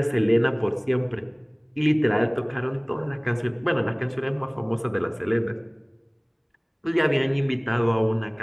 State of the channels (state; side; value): identical; both; correlation 1.00